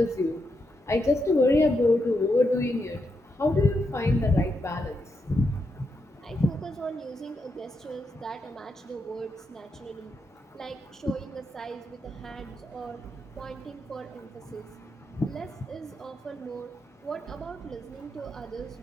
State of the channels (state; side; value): normal; both; correlation 0.83